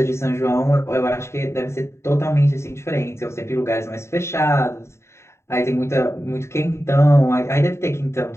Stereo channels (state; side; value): late; right; 0.13 ms